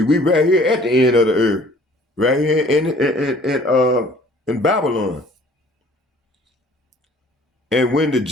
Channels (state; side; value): normal; both; correlation 0.53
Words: we right here at the end of the earth, right here in Babylon. And when the